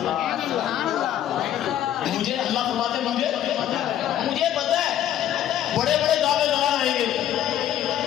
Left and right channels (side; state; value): right; quieter; 11.3 dB